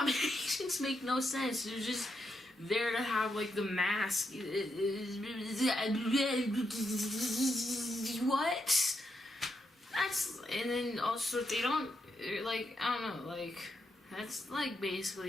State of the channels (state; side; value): normal; both; correlation 0.82